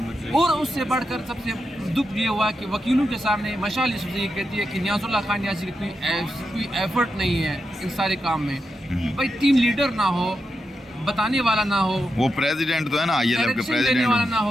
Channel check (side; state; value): both; normal; correlation 0.87